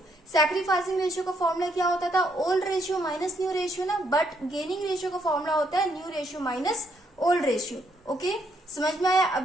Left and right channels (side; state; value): both; normal; correlation 0.73